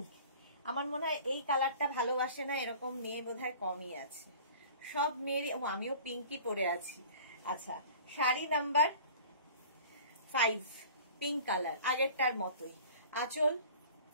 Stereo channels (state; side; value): inverted; both; correlation -0.44